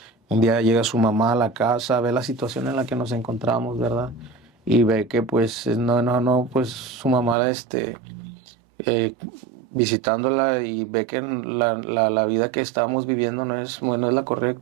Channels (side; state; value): left; drops out; at 7.4 s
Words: Un día llega su mamá a la casa, ve la situación en la que nos encontramos, ¿verdad? Y ve que pues no, pues su mamá eh, visitándola y ve que la vida que estábamos viviendo no es, bueno, es la